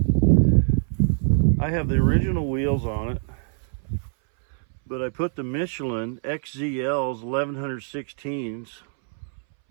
I have the original wheels on it, but I put the Michelin XZL's 1116s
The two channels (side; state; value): left; silent; 62 dB below the other